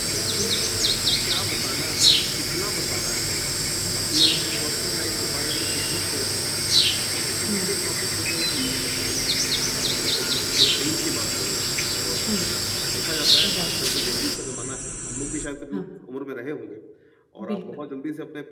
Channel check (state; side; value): identical; both; correlation 1.00